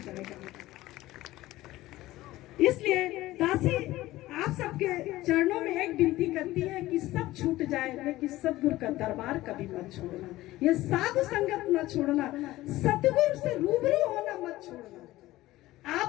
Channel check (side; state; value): right; quieter; 16.9 dB